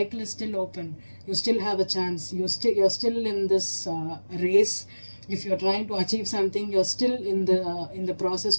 is still open. You still have a chance. You're still in this race. If you're trying to achieve something, you're still in the process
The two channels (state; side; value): inverted; both; correlation -1.00